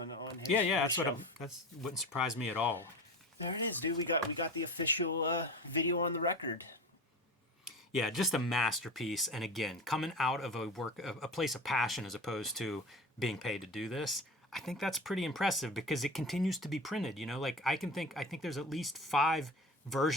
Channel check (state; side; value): normal; both; correlation 0.32